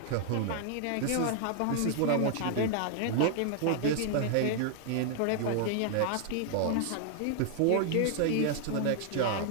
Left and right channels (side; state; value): both; different; correlation 0.00